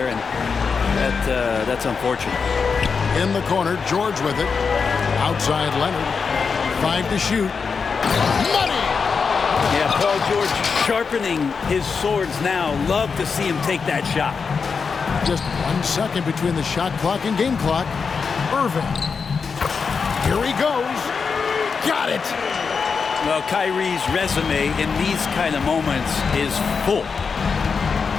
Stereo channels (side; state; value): right; quieter; 5.5 dB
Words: and that's unfortunate. In the corner, George with it. Outside Leonard. 5 to shoot. Money! Yeah, Paul George sharpening his swords now. Love to see him take that shot. Just 1 second between the shot clock and game clock. Irving. Here he goes. Got it! Well, Kyrie's resume in these kind of moments is full.